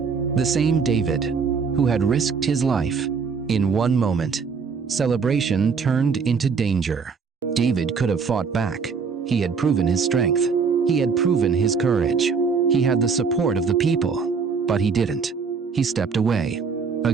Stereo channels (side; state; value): left; quieter; 5.5 dB